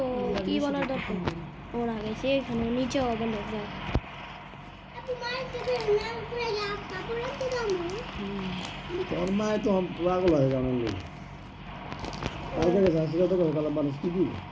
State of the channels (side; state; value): both; identical; correlation 1.00